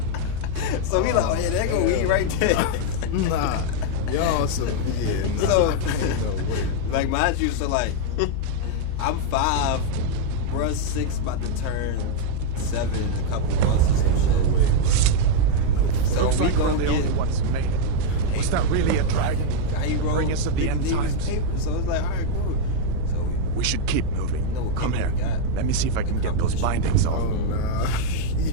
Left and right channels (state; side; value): different; both; correlation 0.00